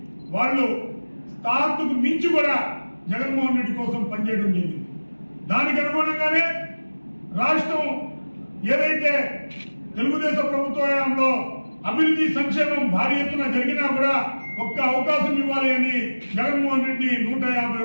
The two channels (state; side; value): inverted; both; correlation -1.00